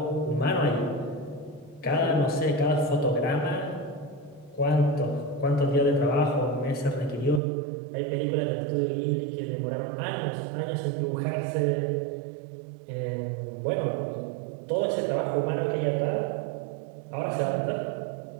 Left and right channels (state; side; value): drops out; left; at 7.4 s